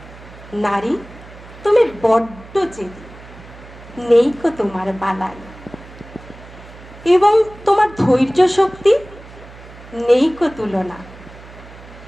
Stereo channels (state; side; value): noise; right; hum, 19 dB below the sound